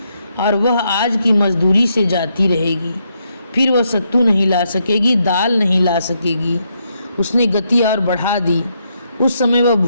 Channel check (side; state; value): both; inverted; correlation -0.78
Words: और वह आज की मजदूरी से जाती रहेगी। फिर वह सत्तू नहीं ला सकेगी, दाल नहीं ला सकेगी। उसने गति और बढ़ा दी। उस समय वह